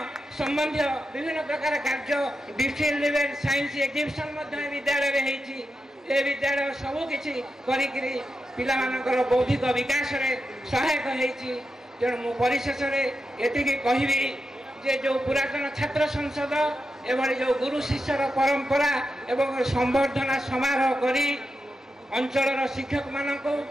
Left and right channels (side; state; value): both; normal; correlation 0.88